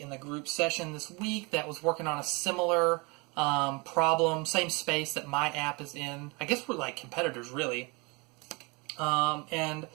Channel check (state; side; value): quieter; left; 28.4 dB